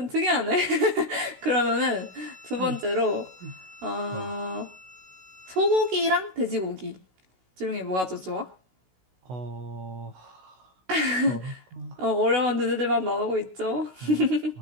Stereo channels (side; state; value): left; late; 16 ms